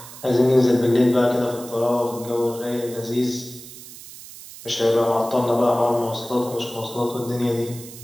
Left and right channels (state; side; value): noise; right; hiss, 16 dB below the sound